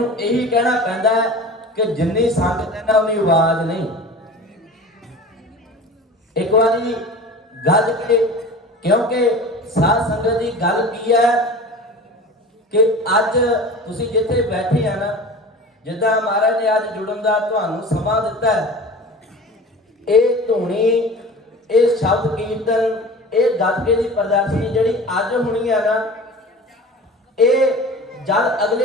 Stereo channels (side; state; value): both; normal; correlation 0.37